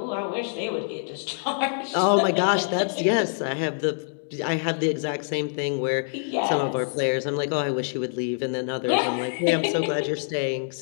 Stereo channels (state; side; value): silent; right; digital silence